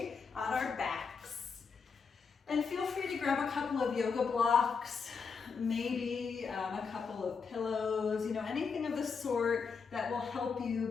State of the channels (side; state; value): right; quieter; 5.5 dB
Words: on our backs. And feel free to grab a couple of yoga blocks, maybe a couple of pillows, anything of the sort that will help you